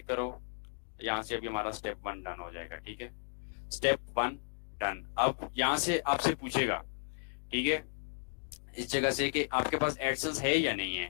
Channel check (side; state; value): right; silent; digital silence